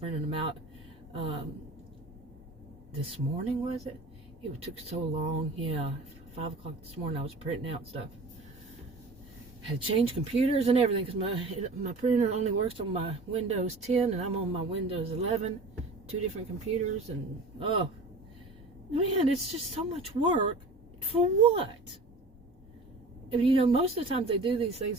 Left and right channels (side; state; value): left; quieter; 3.0 dB